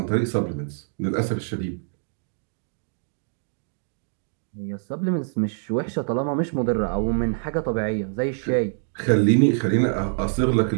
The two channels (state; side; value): silent; left; digital silence